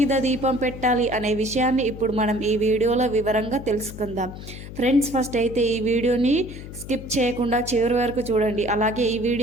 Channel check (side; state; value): left; noise; hum, 12 dB below the sound